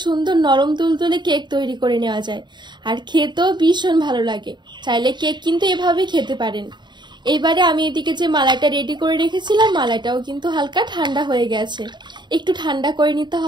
সুন্দর নরম তুলতুলে কেক তৈরি করে নেওয়া যায়। আর খেতেও ভীষণ ভালো লাগে। চাইলে কেক কিন্তু এভাবেই খেতে পারেন। এইবারে আমি এদিকে যে মালাইটা রেডি করে রেখেছিলাম মালাইটাও কিন্তু হালকা ঠান্ডা হয়ে গেছে, একটু ঠান্ডা করে নিতে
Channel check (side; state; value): left; late; 0.22 ms